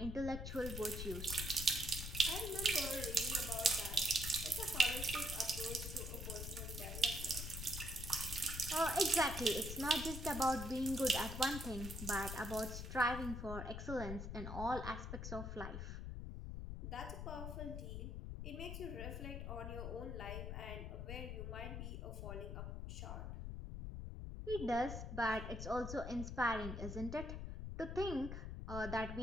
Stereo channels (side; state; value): left; noise; rumble, 5 dB below the sound